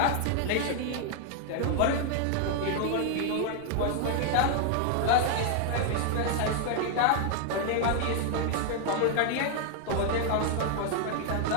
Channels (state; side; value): different; both; correlation 0.00